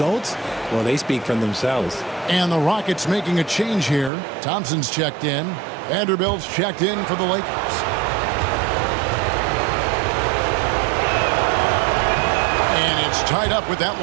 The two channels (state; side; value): drops out; left; at 4.1 s